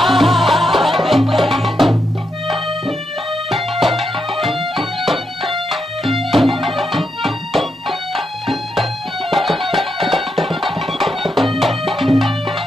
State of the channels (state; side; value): normal; both; correlation 0.82